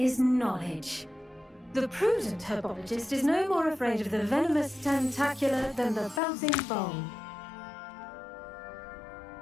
knowledge. The prudent herbologist is no more afraid of the venomous tentacula than the bouncing bone.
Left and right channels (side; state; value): right; drops out; at 6.2 s